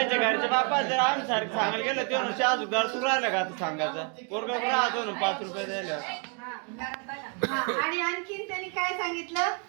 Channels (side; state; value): left; quieter; 37.2 dB